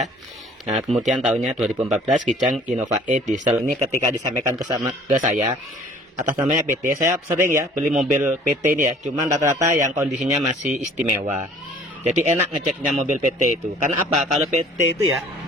Nah, kemudian tahunnya 2014, Kijang Innova E diesel. Ini ketika disampaikan ke saya, atas namanya PT. Saya sering ya beli mobil PT ini ya. Cuman rata-rata yang kondisinya masih istimewa. Jadi enak ngeceknya mobil PT itu. Karena apa? Kalau PT itu ya,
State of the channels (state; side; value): normal; both; correlation 0.52